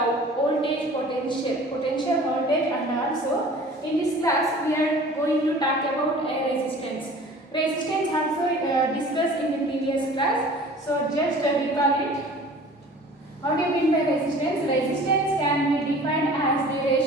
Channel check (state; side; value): normal; both; correlation 0.45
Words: voltage, potential voltage, and also in this class we are going to talk about resistance. Resistance also discussed in the previous class. So just recall it. What do you mean by resistance? Resistance can be defined as the